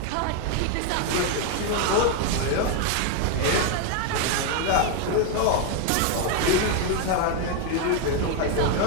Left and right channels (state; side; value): different; both; correlation 0.01